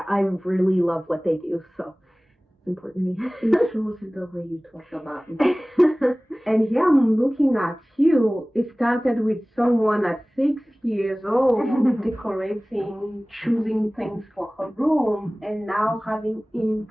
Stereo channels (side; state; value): both; normal; correlation 0.98